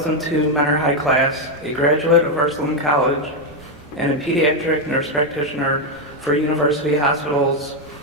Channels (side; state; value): both; normal; correlation 0.03